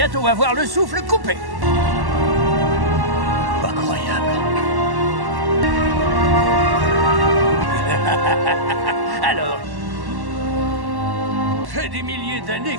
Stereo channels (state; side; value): late; left; 1.1 ms